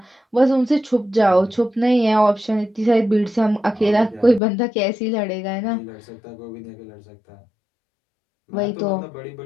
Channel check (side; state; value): right; drops out; at 4.4 s